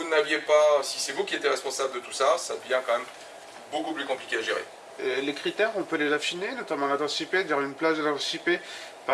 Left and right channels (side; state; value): both; identical; correlation 1.00